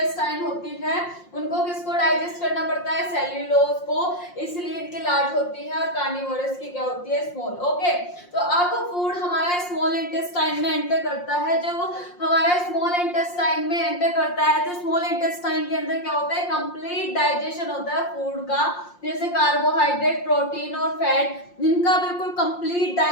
होती है, उनको किसको डाइजेस्ट करना पड़ता है? सेल्यूलोज को, इसलिए इनकी लार्ज होती है, और कार्निवोरस की क्या होती है? स्मॉल। ओके, तो अब फूड हमारा स्मॉल इंटेस्टाइन में एंटर करता है। जब हमारा स्मॉल इंटेस्टाइन में एंटर करता है तो स्मॉल इंटेस्टाइन के अंदर क्या होता है? कंप्लीट डाइजेशन होता है फूड का, जैसे कार्बोहाइड्रेट, प्रोटीन और फैट, इनका बिल्कुल कंप्लीट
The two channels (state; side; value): late; right; 5.6 ms